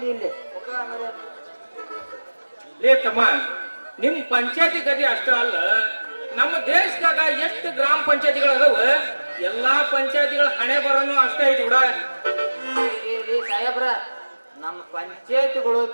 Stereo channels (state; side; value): inverted; both; correlation -1.00